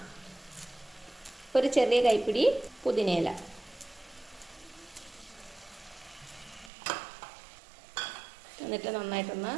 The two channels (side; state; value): left; drops out; at 6.7 s